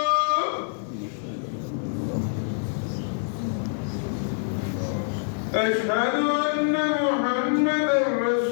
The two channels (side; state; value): right; silent; digital silence